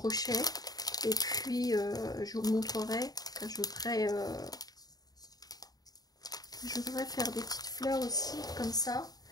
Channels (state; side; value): late; right; 0.18 ms